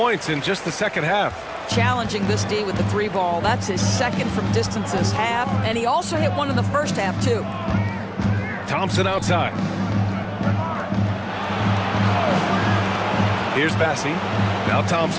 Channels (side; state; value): both; identical; correlation 1.00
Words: in just the second half. Challenging this D with the 3 ball. That's his second from distance this half. And he also hit one in the first half, too. Thompson outside. Here's Bassey. Now